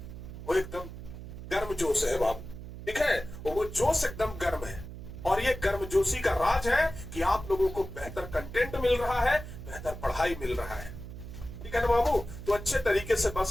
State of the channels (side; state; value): right; noise; hum, 11 dB below the sound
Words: वो एकदम गर्म जोश है बाबू। ठीक है, वो जोश एकदम गर्म है। और ये गर्मजोशी का राज है कि आप लोगों को बेहतर कंटेंट मिल रहा है, बेहतर पढ़ाई मिल रहा है। ठीक है ना बाबू? तो अच्छे तरीके से